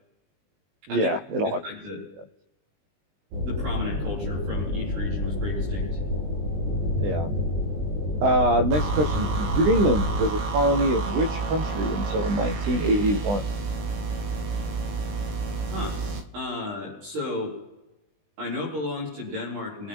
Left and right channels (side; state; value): left; late; 20 ms